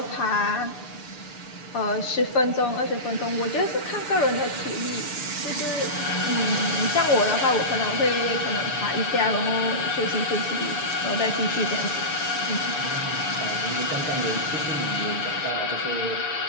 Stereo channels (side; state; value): right; late; 6.8 ms